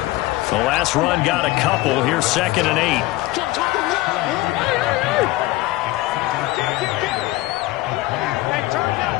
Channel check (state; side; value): quieter; right; 18.0 dB